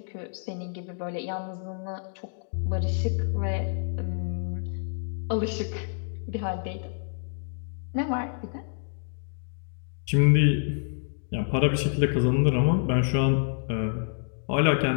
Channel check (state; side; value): silent; right; digital silence